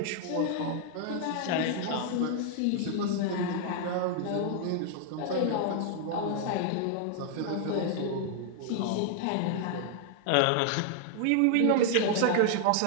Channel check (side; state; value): both; different; correlation 0.00